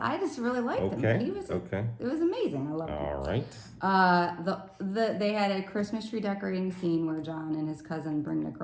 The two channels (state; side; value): identical; both; correlation 1.00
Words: just really liked him. He was it was amazing. I loved it. All right. They had a Christmas tree decorating scene where John and his cousin bring the